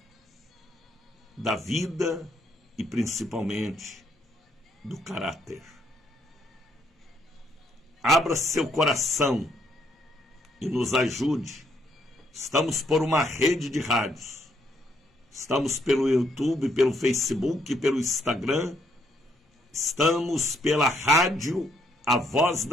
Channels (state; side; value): normal; both; correlation 0.71